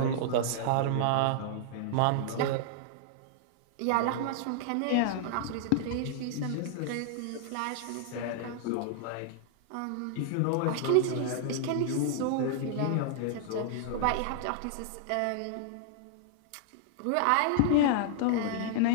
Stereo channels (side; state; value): both; different; correlation -0.01